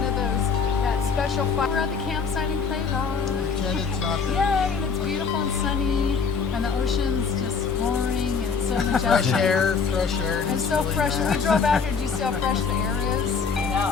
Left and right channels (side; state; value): right; quieter; 5.6 dB